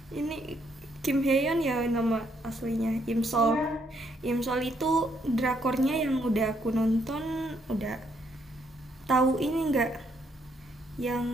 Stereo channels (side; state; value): both; normal; correlation 0.72